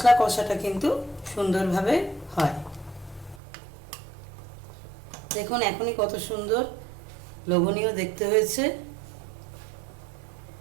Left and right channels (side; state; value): left; drops out; at 3.4 s